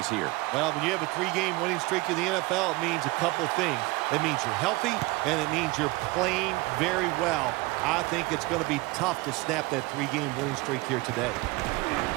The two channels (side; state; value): left; quieter; 22.3 dB